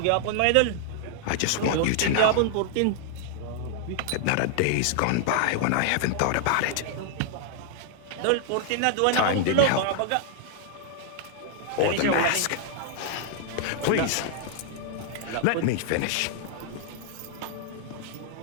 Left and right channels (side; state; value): both; different; correlation -0.01